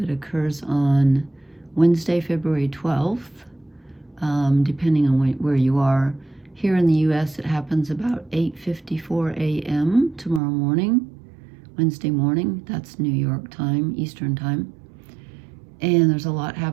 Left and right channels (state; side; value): drops out; left; at 10.4 s